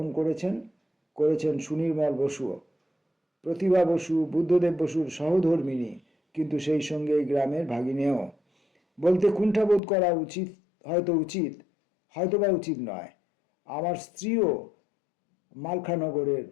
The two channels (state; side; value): drops out; right; at 9.8 s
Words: করেছেন সুনির্মল বসুও। প্রতিভা বসু বুদ্ধদেব বসুর সহধর্মিণী, কিন্তু সেই সঙ্গে এই গ্রামের ভাগিনেও। বলতে কুণ্ঠাবোধ করা উচিত, হয়তোবা উচিত নয়। আমার স্ত্রীও মালখানগরের